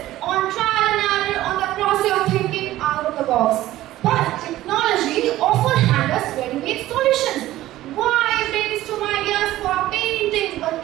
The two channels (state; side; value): quieter; left; 15.2 dB